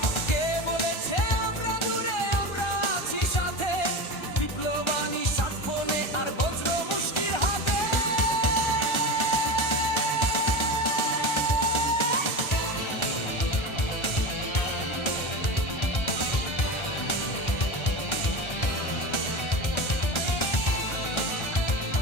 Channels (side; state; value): right; late; 1.4 ms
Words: কে বলেছে আমরা দূরে, আমরা আছি সাথে। বিপ্লবানী স্মার্টফোনে আর বজ্র মুষ্টির হাতে।